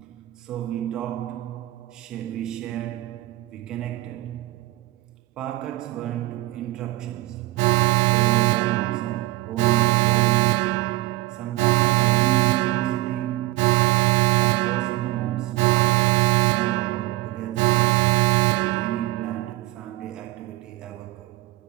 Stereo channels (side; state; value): left; quieter; 19.4 dB